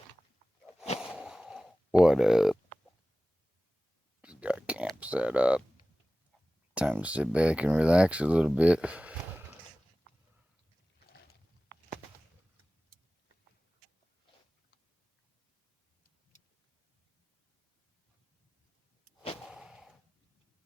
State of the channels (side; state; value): both; normal; correlation 0.97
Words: Camp set up. Time to sit back and relax a little bit.